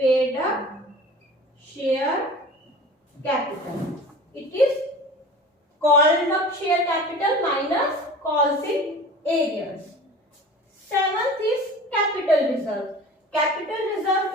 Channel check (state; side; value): normal; both; correlation 0.39